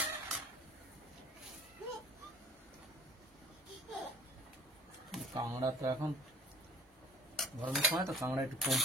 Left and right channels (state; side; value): normal; both; correlation 0.53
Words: কাঁকড়া তো এখন গরমের সময় তো কাঁকড়া একটু কম